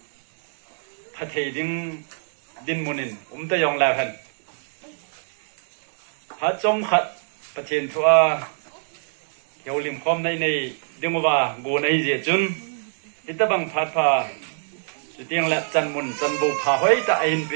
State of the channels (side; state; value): left; silent; digital silence